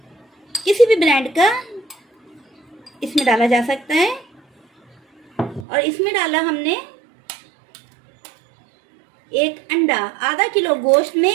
किसी भी ब्रांड का इसमें डाला जा सकता है। और इसमें डाला हमने एक अंडा, आधा किलो गोश्त में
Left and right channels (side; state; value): left; drops out; at 5.7 s